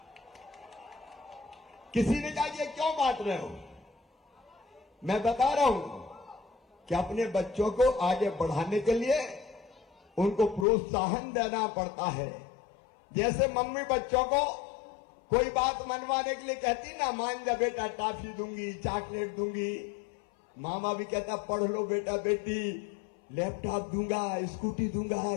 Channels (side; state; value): right; drops out; at 10.7 s